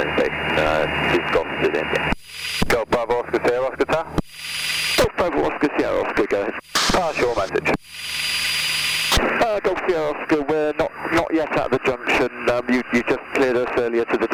Station. This Golf to the India. Golf Bravo Oscar Sierra Oscar Tower. Golf Bravo Oscar Sierra Oscar, go ahead. Pass your message. Golf Sierra Oscar, we're not yet at the junction. You just cleared us earlier to the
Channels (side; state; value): both; identical; correlation 1.00